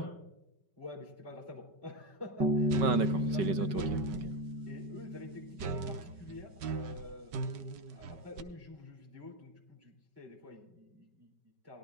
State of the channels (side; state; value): left; late; 5.3 ms